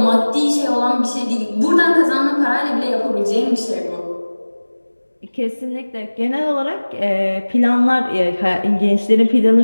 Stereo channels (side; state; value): both; inverted; correlation -1.00